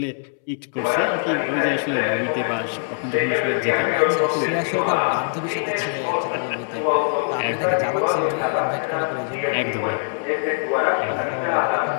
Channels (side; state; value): right; silent; 63 dB below the other